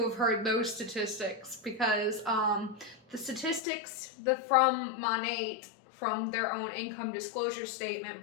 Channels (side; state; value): right; drops out; at 3.6 s